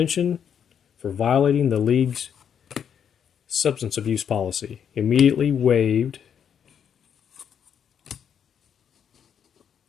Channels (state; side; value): quieter; right; 8.2 dB